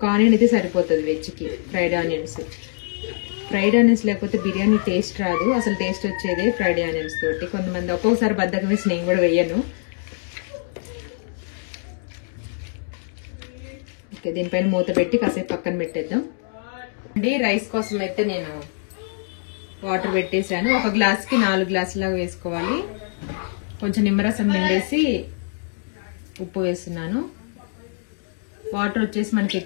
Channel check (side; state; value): right; silent; digital silence